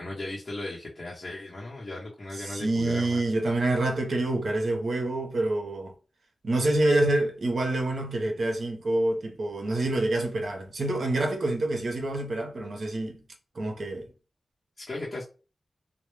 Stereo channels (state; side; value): normal; both; correlation 0.91